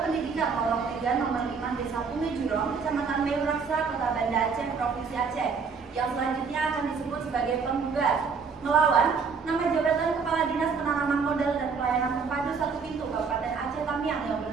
Pendidikan Lorong 3 nomor 5 Desa Punge Jurong, Kecamatan Meuraksa, Kota Banda Aceh, Provinsi Aceh. Yang selanjutnya akan disebut sebagai penggugat melawan nama jabatan Kepala Dinas Penanaman Modal dan Pelayanan Terpadu 1 Pintu Kabupaten Aceh Tamiang yang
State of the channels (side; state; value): left; quieter; 5.4 dB